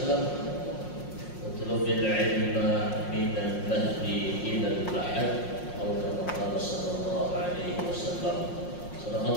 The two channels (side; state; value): right; late; 5.6 ms